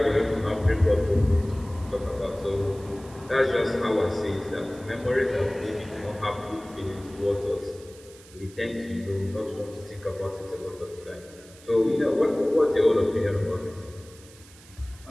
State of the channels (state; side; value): noise; right; hiss, 23 dB below the sound